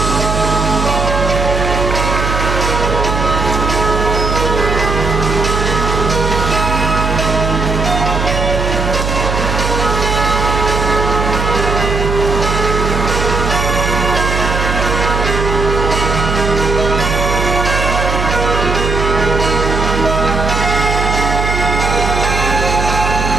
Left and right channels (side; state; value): right; noise; hum, 2 dB below the sound